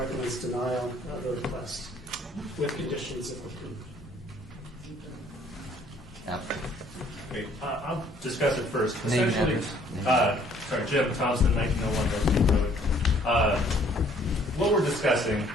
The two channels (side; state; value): both; normal; correlation 0.61